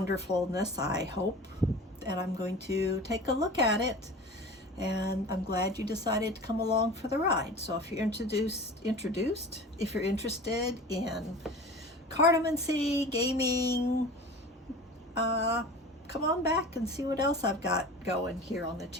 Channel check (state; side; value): normal; both; correlation 0.37